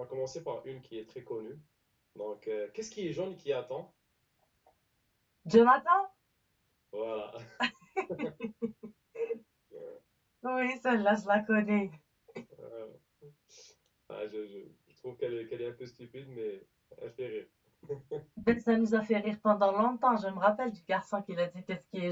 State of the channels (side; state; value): both; identical; correlation 1.00